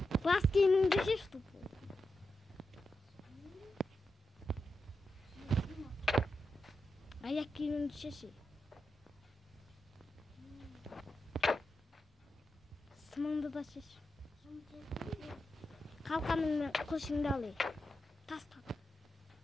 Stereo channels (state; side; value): normal; both; correlation 0.88